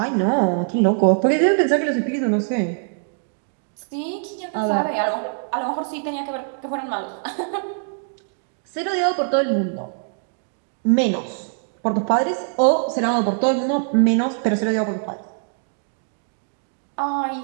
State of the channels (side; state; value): left; silent; digital silence